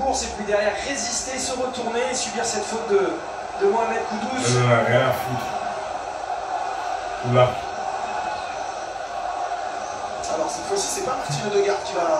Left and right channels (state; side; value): identical; both; correlation 1.00